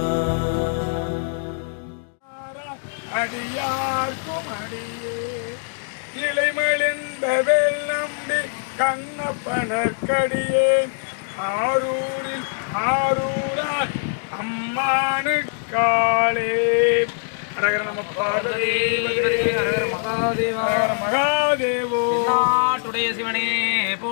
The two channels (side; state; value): right; silent; digital silence